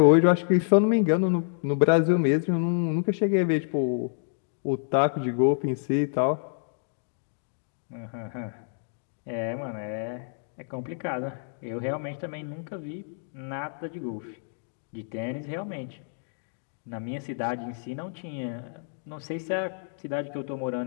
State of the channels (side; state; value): right; silent; digital silence